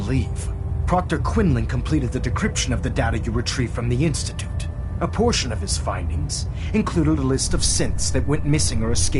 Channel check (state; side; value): identical; both; correlation 1.00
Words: Proctor Quinlan completed the decryption of the data you retrieved from the Institute. A portion of his findings included a list of synths that went missing or